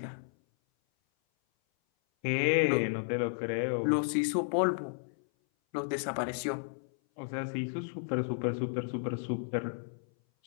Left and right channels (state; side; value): silent; right; 56 dB below the other